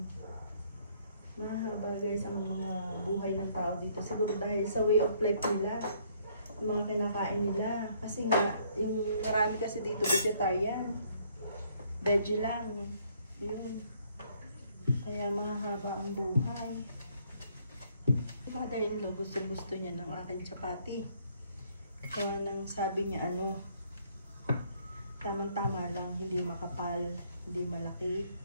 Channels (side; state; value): both; inverted; correlation -0.66